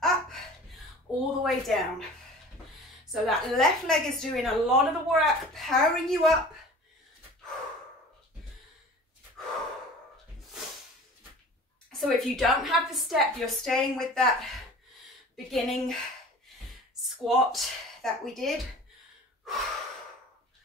Up, all the way down. So that left leg is doing a lot of the work, powering you up. So if you don't have the step, you're staying with that beginning squat that we did.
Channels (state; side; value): normal; both; correlation 0.42